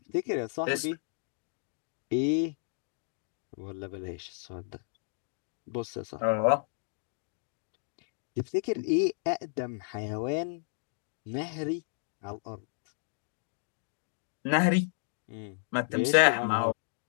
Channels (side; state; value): right; silent; digital silence